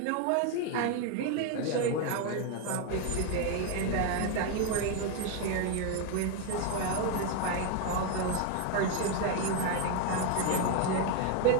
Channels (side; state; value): both; different; correlation 0.01